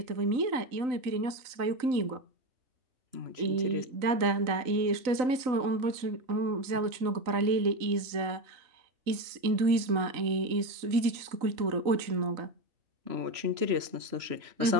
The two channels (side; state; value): left; late; 3.9 ms